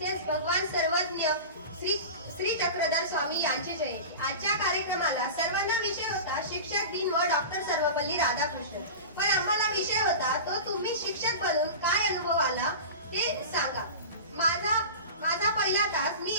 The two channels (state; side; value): inverted; both; correlation -0.30